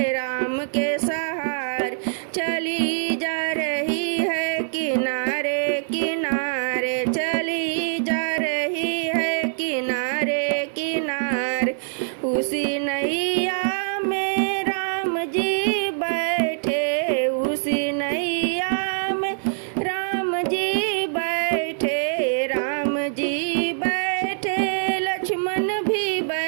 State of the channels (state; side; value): silent; left; digital silence